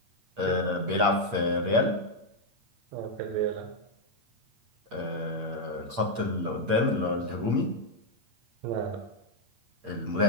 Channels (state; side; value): late; left; 8.6 ms